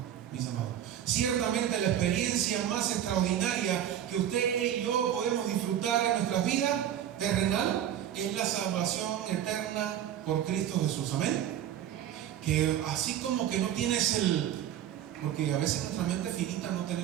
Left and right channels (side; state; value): left; quieter; 10.5 dB